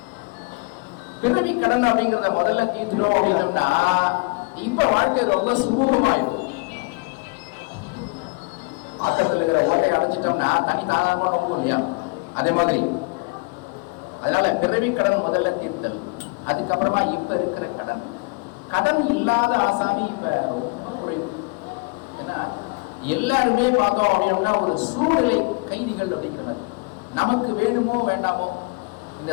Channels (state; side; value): quieter; right; 29.2 dB